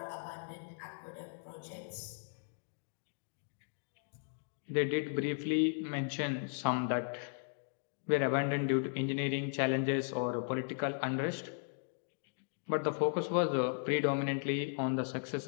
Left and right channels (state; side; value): silent; right; digital silence